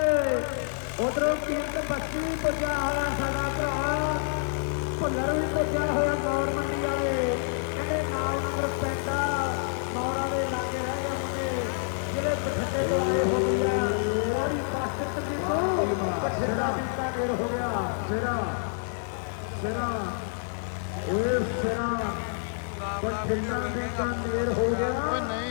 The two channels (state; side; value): silent; right; 57 dB below the other